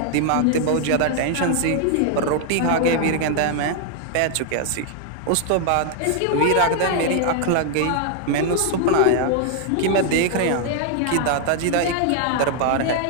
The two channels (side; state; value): both; different; correlation 0.00